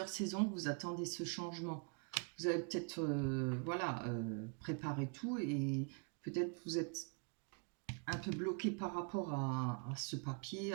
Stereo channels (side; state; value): left; quieter; 38.3 dB